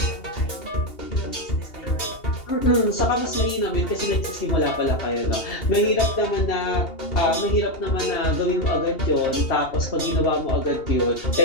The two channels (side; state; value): right; late; 2.8 ms